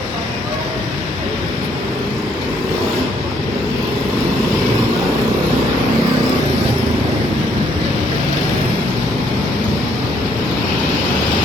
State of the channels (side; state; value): both; normal; correlation 0.68